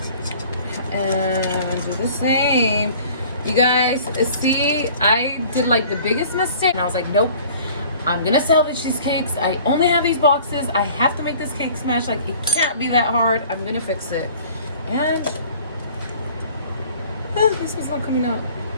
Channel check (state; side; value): inverted; both; correlation -0.50